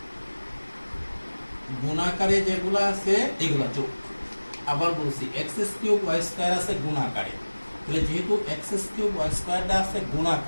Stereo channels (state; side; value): inverted; both; correlation -1.00